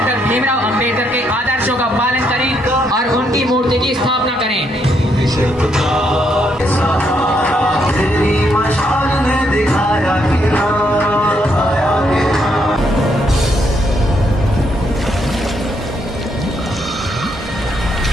भीमराव अम्बेडकर के आदर्शों का पालन करें और उनकी मूर्ति की स्थापना करें।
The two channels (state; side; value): normal; both; correlation 0.75